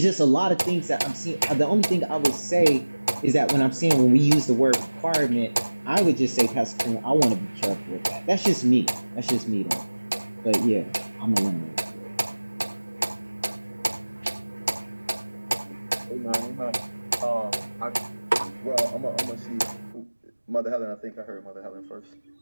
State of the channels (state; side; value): inverted; both; correlation -1.00